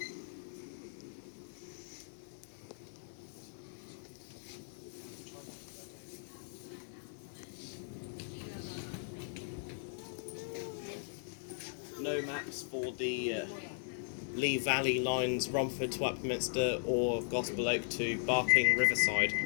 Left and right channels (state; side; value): silent; right; digital silence